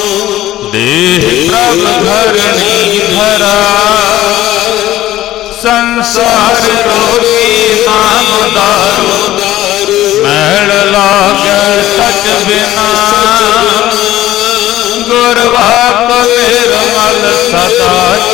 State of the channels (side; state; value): right; quieter; 14.6 dB